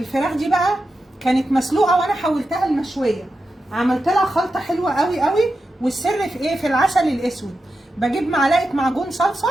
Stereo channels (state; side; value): normal; both; correlation 0.90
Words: دي بقى كانت مسلوقه وانا حولتها لمشويه، عملت لها خلطه حلوه قوي قوي. والسر في ايه؟ في العسل الاسود. بجيب معلقه معجون